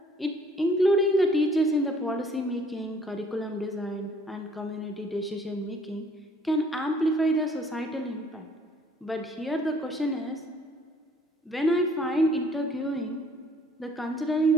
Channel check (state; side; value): normal; both; correlation 0.59